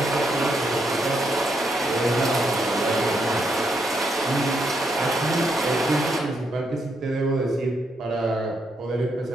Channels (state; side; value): normal; both; correlation 0.78